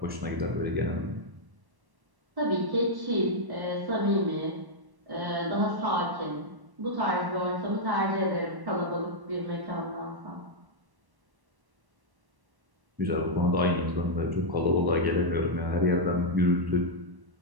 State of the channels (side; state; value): left; late; 1.1 ms